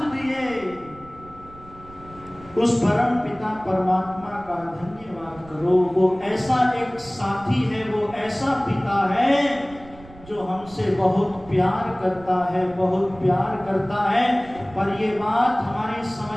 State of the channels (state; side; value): noise; right; rumble, 21 dB below the sound